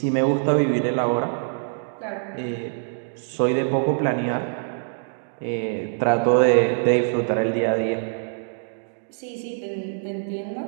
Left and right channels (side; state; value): left; silent; digital silence